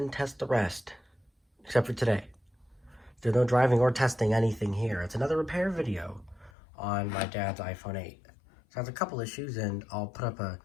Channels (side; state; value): right; drops out; at 6.5 s